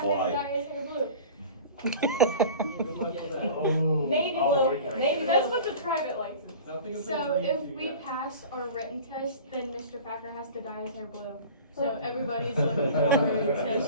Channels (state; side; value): inverted; both; correlation -0.40